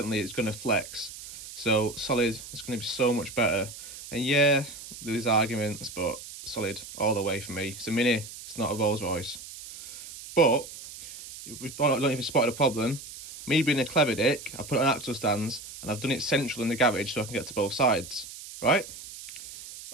it's going to flex. So solid is going to be so much better. And yeah, there's arguments, but solid all the way for me. It's a Mini, it's not a Rolls Royce. But I don't know if you spotted a problem. Me being a clever dick, I put it on axle stands and I've done it central in the garage so I can get to both sides, right?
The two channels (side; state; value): right; noise; hiss, 13 dB below the sound